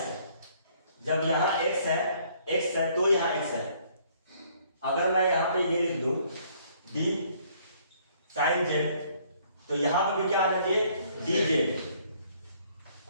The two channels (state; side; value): inverted; both; correlation -0.63